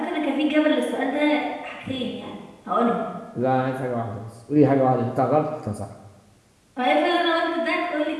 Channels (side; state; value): both; identical; correlation 1.00